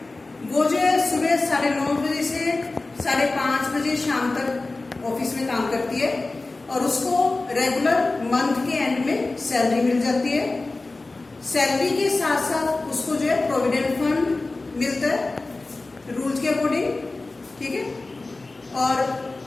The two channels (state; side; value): quieter; right; 3.3 dB